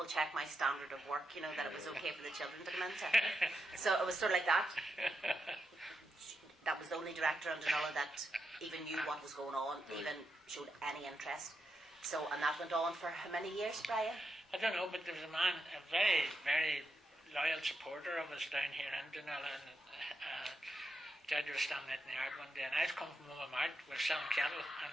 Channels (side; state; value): both; normal; correlation 0.85